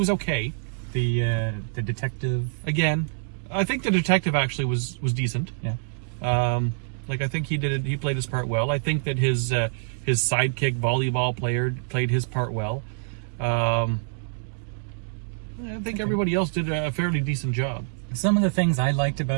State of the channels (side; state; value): left; silent; digital silence